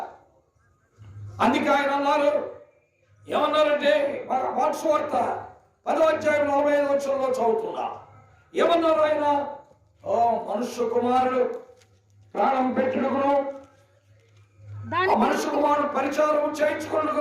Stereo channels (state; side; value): identical; both; correlation 1.00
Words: అందుకే ఆయన అన్నారు, ఏమన్నారంటే మార్క్స్ వార్త 10:45 చదువుతున్నా. ఏమన్నారు ఆయన? ఓ మనుష్య కుమారుడు ప్రాణం పెట్టుడుకును, మనుష్య కుమారుడు పరిచారం చేయించుకున్నకు